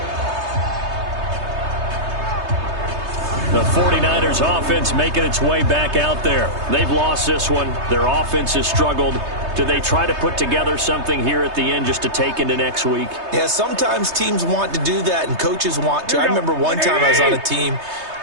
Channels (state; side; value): late; left; 3.2 ms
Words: The 49ers offense making its way back out there. They've lost this one. Their offense has struggled. Do they try to put together something here at the end just to take into next week? Yeah, sometimes teams want to do that and coaches want to. I remember one time I was on a team